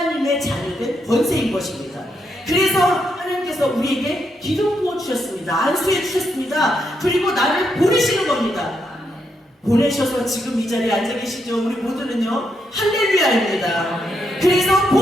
자녀된 권세인 것입니다. 그래서 하나님께서 우리에게 기름 부어주셨습니다. 안수해 주셨습니다. 그리고 나를 보내시는 겁니다. 보내셔서 지금 이 자리에 앉아 계시죠. 우리 모두는요 할렐루야입니다. 그래서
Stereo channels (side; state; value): both; normal; correlation 0.80